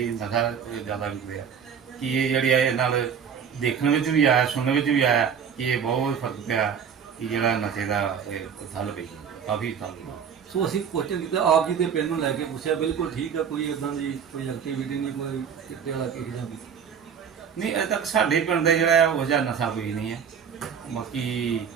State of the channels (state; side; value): quieter; left; 7.4 dB